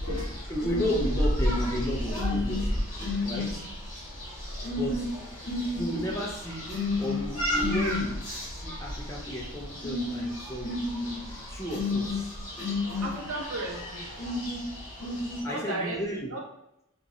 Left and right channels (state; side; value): normal; both; correlation 0.59